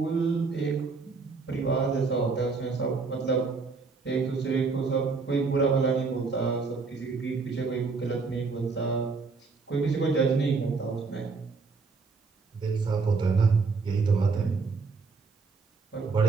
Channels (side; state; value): left; quieter; 4.5 dB